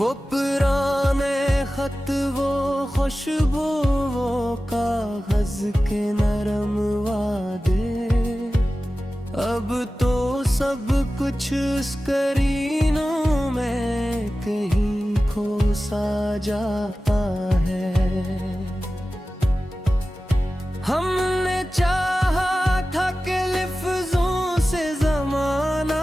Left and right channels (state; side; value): normal; both; correlation 0.95